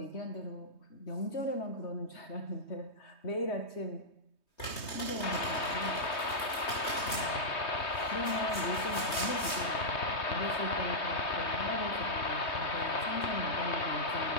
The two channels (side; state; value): right; late; 3.2 ms